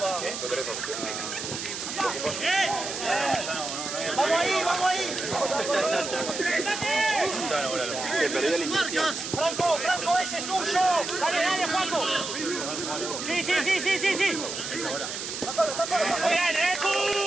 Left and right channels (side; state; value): right; noise; hiss, 6 dB below the sound